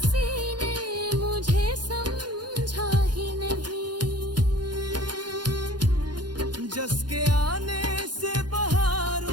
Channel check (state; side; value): late; left; 0.70 ms